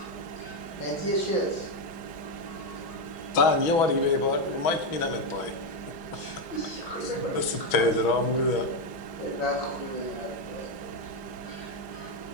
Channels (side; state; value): right; late; 6.1 ms